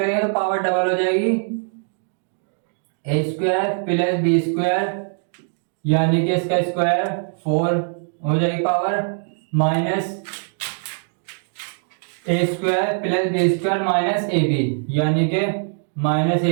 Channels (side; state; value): left; silent; 64 dB below the other